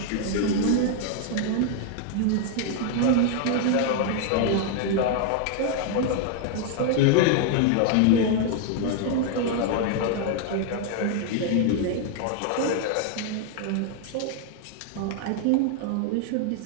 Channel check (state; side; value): different; both; correlation 0.00